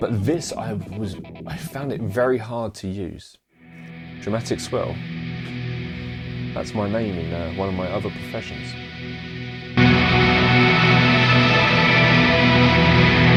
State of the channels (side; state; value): both; identical; correlation 1.00